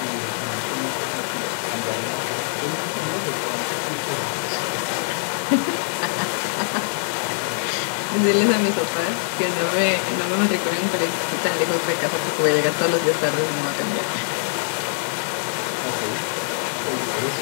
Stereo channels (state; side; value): silent; right; 63 dB below the other